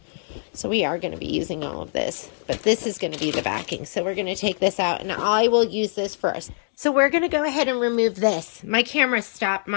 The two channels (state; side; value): silent; right; digital silence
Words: So we are going to be using all of this, but this is going to be the backing. So we're going to take this out, and I will use this first. So we're going to go ahead and remove this. My camera stopped.